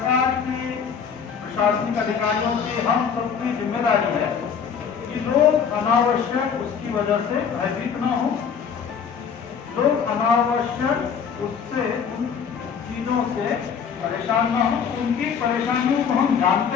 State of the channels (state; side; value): quieter; right; 6.9 dB